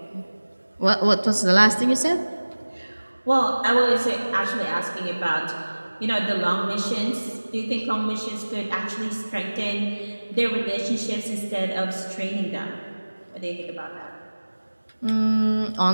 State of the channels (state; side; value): inverted; both; correlation -1.00